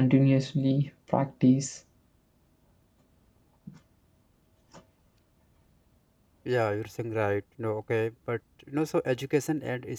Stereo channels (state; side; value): identical; both; correlation 1.00